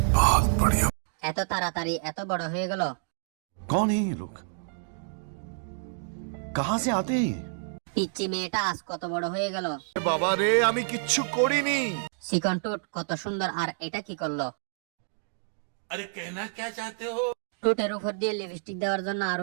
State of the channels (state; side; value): silent; left; digital silence